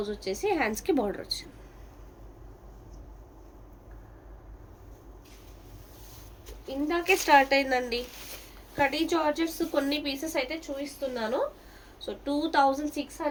వచ్చేసి హ్యాండ్స్కి బార్డర్ వచ్చింది. ఇందాకే స్టార్ట్ అయిందండి కడి జార్జెట్స్. కొన్ని పీసెస్ అయితే చూపిస్తున్నాను. So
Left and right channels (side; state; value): both; identical; correlation 1.00